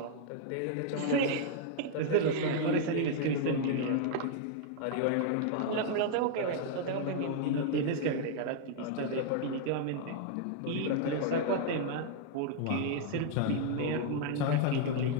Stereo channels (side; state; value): both; different; correlation 0.00